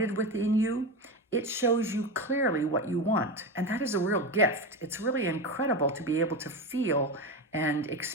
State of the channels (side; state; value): both; normal; correlation 0.19